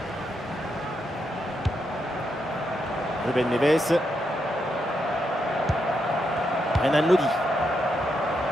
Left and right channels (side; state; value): both; normal; correlation 0.82